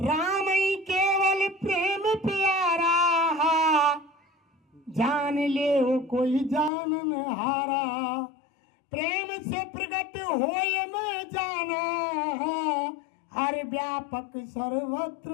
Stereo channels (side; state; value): right; drops out; at 6.7 s